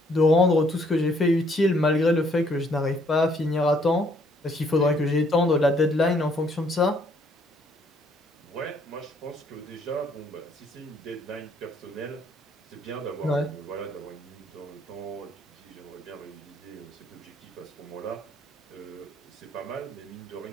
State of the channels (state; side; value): normal; both; correlation 0.66